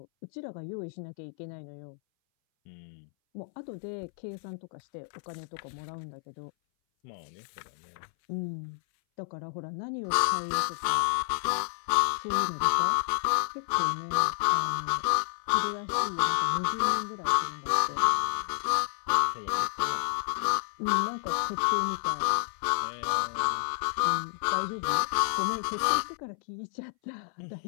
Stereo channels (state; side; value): silent; right; 58 dB below the other